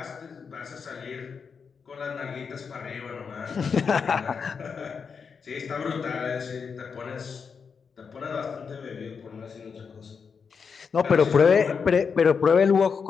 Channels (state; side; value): quieter; right; 5.9 dB